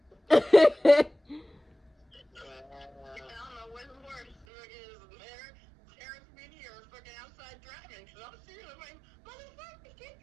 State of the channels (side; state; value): left; drops out; at 4.5 s